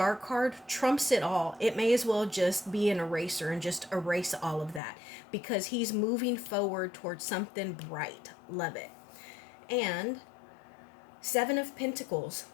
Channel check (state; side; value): drops out; right; at 4.8 s